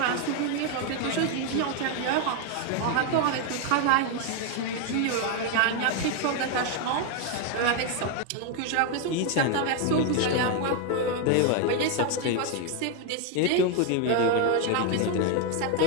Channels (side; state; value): both; different; correlation 0.01